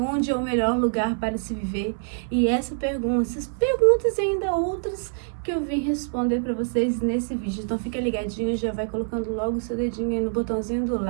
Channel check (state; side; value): silent; left; 58 dB below the other